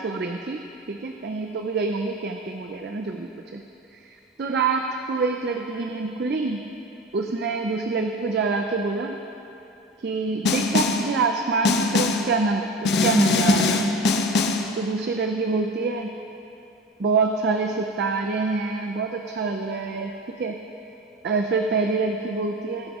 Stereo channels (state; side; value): normal; both; correlation 0.32